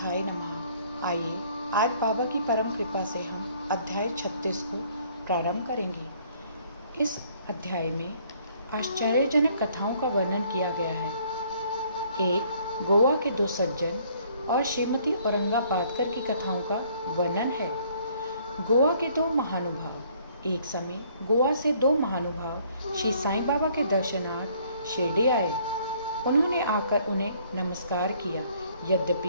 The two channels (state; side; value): inverted; both; correlation -0.62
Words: नमः। आइए आज बाबा की परम कृपा से हम अध्याय 36 को प्रारंभ करेंगे। इस अध्याय में आश्चर्यजनक कथाओं का वर्णन किया गया है। एक गोवा के दो सज्जन और श्रीमती औरंगाबादकर की कथाओं का वर्णन है। गोवा के दो महानुभाव। एक समय गोवा से दो महानुभाव श्री साईं बाबा के दर्शनार्थ शिरडी आए। उन्होंने आकर उन्हें नमस्कार किया। यद्यपि